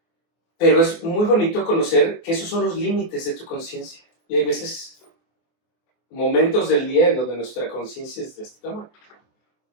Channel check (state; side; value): late; right; 24 ms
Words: Pero es muy bonito conocer que esos son los límites de tu conciencia. Y hay veces, momentos del día en donde nuestra conciencia es de este tamaño.